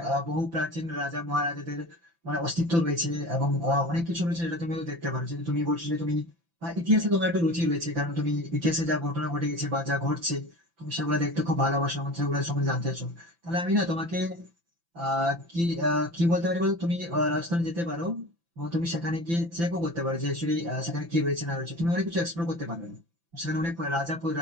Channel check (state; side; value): late; left; 5.9 ms